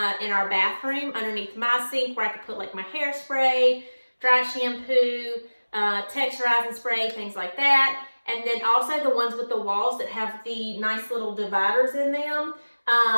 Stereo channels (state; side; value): inverted; both; correlation -1.00